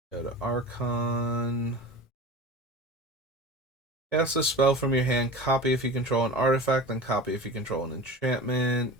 Go to Archon. Cast a spell from your hand. Copy if you control an artifact, then copy if you control an enchantment.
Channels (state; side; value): normal; both; correlation 0.34